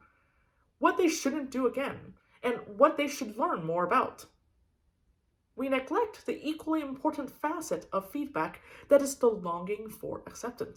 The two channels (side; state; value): both; identical; correlation 1.00